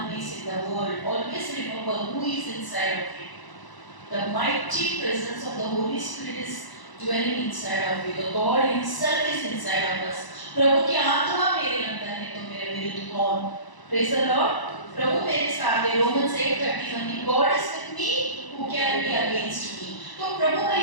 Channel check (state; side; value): late; right; 1.0 ms